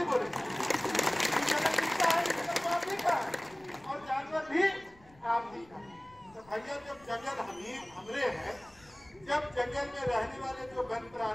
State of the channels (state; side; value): noise; left; rumble, 27 dB below the sound